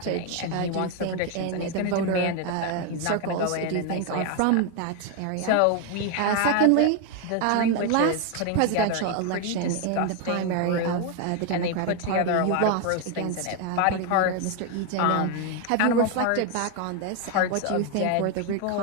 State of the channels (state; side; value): different; both; correlation 0.01